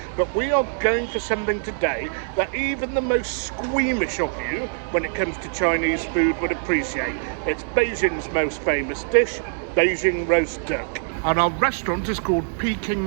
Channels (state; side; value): silent; left; digital silence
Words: But we are going for something today that even the most squeamish of you, when it comes to Chinese food, would appreciate. It's Beijing's most famous dish, Beijing roast duck. And our restaurant is called